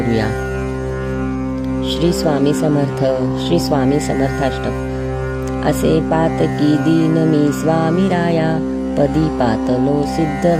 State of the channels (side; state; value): both; identical; correlation 1.00